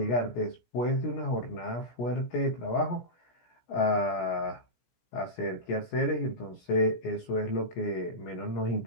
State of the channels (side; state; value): right; late; 17 ms